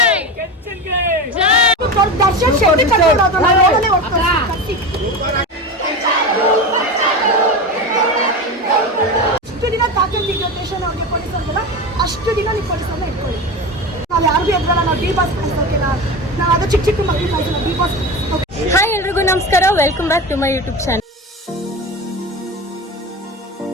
ದರ್ಶನ್ ಶೆಟ್ಟಿ ಕರ್ಕೊಂಡೋದು ನಾನು ನೋಡಲೇ ಹೋಗ್ತಾರೆ. ಅಷ್ಟು ದಿನ ತಾಕಂತಿದ್ದ ಸ್ಟೇಷನ್ ಅವ್ರಿಗೆ ಪೊಲೀಸರಿಗೆಲ್ಲ ಅಷ್ಟು ದಿನ ನೀವು ಪೊಲೀಸರನ್ನ ಇಟ್ಕೊಳ್ಳಿ. ನಾವು ಯಾರಿಗೂ ಎದ್ರಲ್ಲ. ನಾವು ಡಿ ಬಾಸ್ ಕಳಿಸೋಕಿಲ್ಲ. ನಾವು ಅದು ಚಿಕ್ಕ ಚಿಕ್ಕ ಮಕ್ಕಳು ಕಳಿಸೋಣ. D boss. ಹಾಯ್ ಎಲ್ರಿಗೂ ನಮಸ್ಕಾರ. Welcome back to my YouTube channel.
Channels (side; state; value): both; normal; correlation 0.25